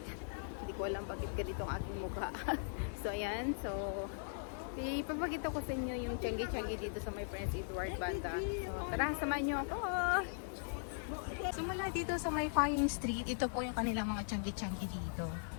Hindi ko alam bakit ganito ang aking mukha. So, ayan. So, ipapakita ko sa inyo yung tiyanggi-tiyanggi dito sa my Prince Edward banda. So, tara, samahan nyo ako. So, mula dito sa may Flying Street, ito po yung kanilang mga tiyanggi-tiyanggi dito.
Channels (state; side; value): silent; right; digital silence